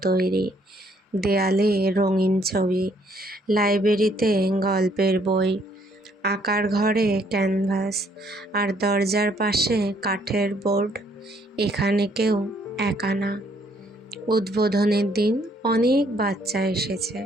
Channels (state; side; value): normal; both; correlation 0.67